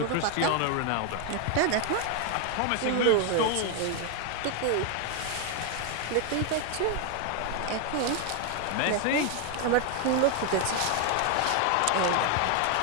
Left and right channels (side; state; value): both; different; correlation 0.00